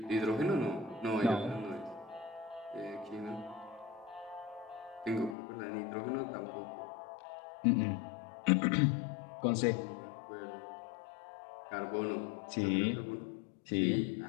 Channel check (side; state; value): right; drops out; at 5.4 s